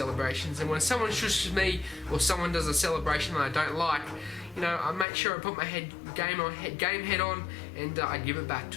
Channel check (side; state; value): right; drops out; at 5.1 s